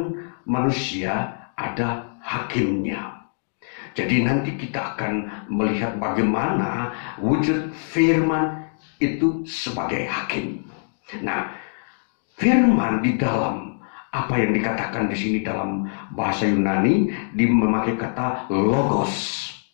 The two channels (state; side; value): silent; right; digital silence